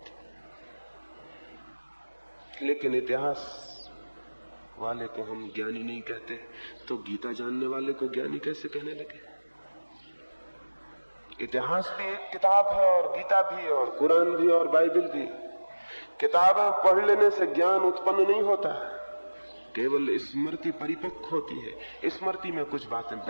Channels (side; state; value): both; inverted; correlation -1.00